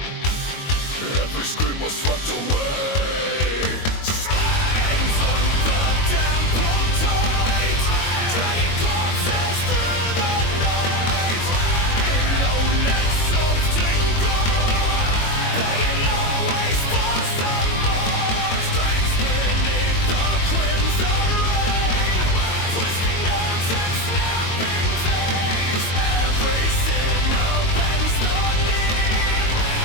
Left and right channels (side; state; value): right; late; 22 ms